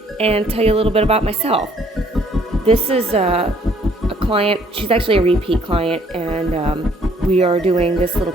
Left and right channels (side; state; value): both; normal; correlation 0.63